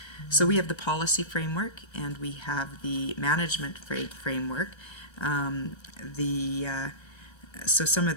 So we have the policy framework and we have the management framework. So some of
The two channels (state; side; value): late; right; 1.3 ms